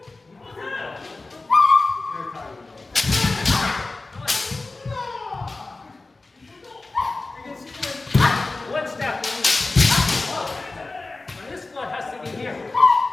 You can see one step. Now this one has to be here.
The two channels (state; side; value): quieter; right; 3.4 dB